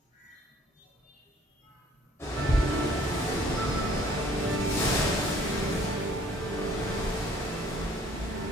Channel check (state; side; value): normal; both; correlation 0.58